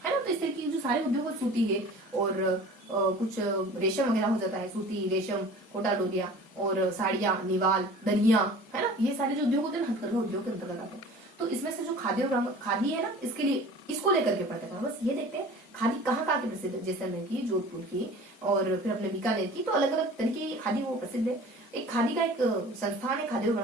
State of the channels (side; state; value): both; normal; correlation 0.43